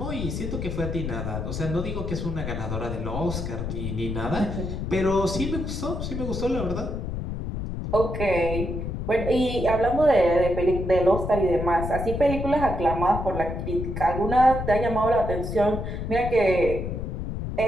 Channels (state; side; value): noise; left; rumble, 4 dB below the sound